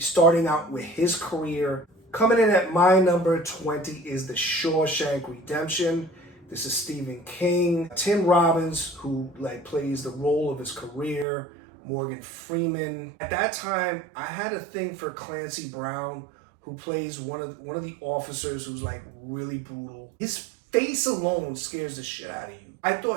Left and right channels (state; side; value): drops out; left; at 11.2 s